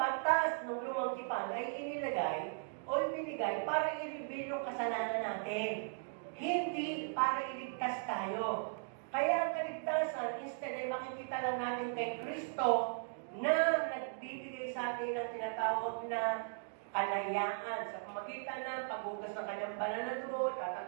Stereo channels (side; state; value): left; silent; digital silence